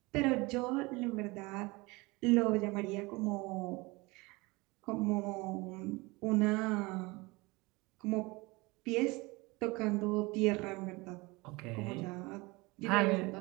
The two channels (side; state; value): left; quieter; 24.2 dB